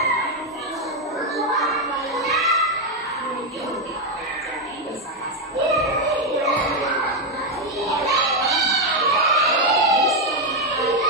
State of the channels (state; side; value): normal; both; correlation 0.05